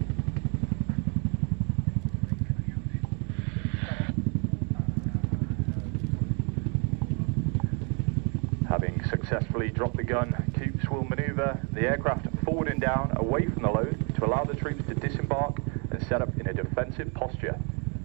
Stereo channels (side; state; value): left; quieter; 35.8 dB